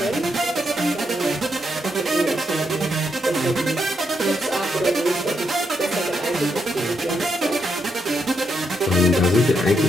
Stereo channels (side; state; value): both; normal; correlation 0.80